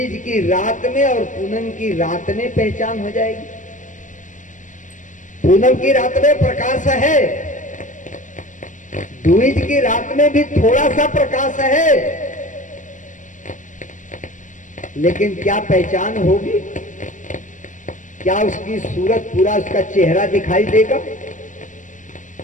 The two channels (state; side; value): late; right; 0.37 ms